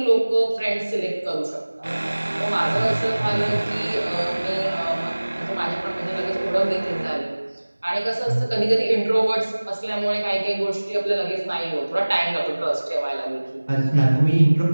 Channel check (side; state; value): both; inverted; correlation -1.00